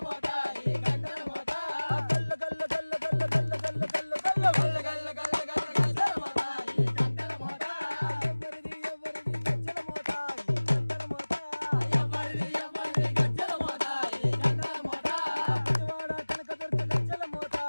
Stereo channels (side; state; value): both; inverted; correlation -1.00